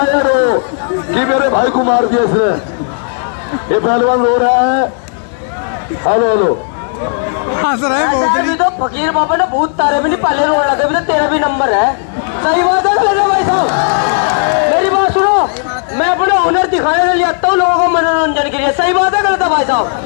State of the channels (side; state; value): right; silent; digital silence